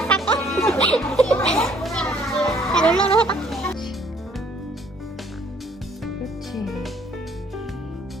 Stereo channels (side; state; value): both; normal; correlation 0.62